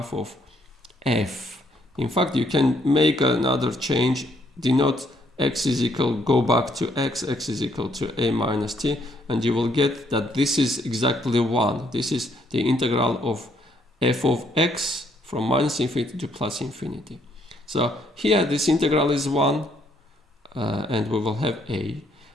of f. In fact, you can make another change, denote x is equal, go back to x is equal to a minus t, and you will get that this is exactly 1. This is the integral of f of x from minus infinity to plus infinity. So here this integral is 1, and we will have a.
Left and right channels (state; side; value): normal; both; correlation 0.70